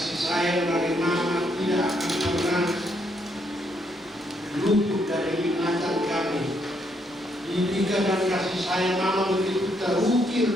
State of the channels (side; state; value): both; normal; correlation 0.74